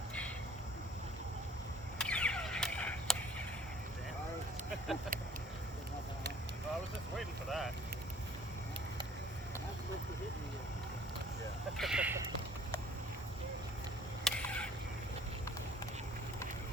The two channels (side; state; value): both; normal; correlation 0.55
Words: Well, I was just waiting for that. That's supposed to hit me. Yeah.